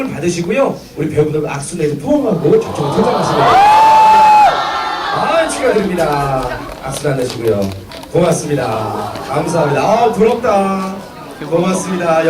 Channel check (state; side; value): identical; both; correlation 1.00